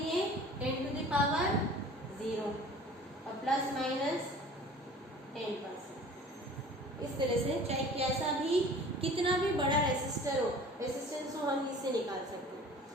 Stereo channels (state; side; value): normal; both; correlation 0.45